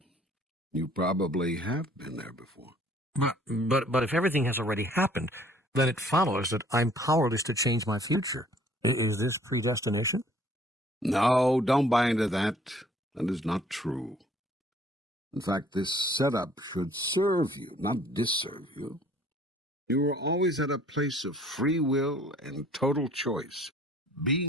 You probably have been there before. But if everything has already happened, then it follows that I'm powerless to change my future. Is this predestination? No, don't buy into that. That is not true. In fact, this setup should serve you, not disserve you. You are always at a place of free will and total choice.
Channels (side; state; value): both; normal; correlation 0.57